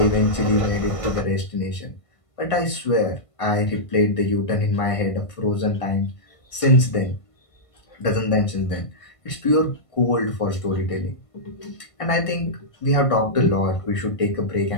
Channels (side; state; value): right; late; 1.5 ms